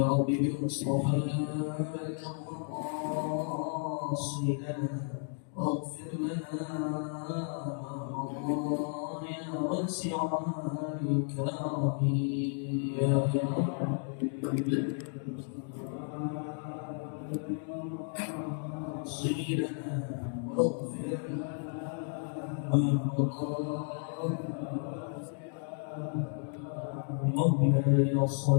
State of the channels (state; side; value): silent; right; 56 dB below the other